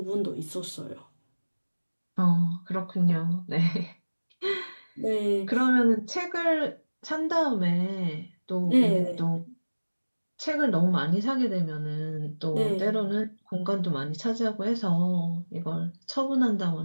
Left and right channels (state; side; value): inverted; both; correlation -1.00